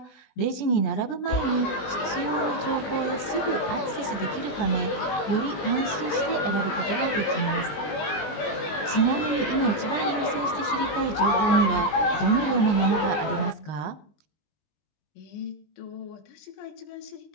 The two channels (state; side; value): late; right; 20 ms